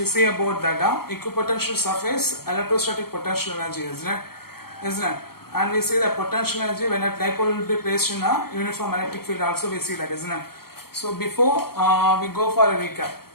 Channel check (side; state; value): right; late; 0.95 ms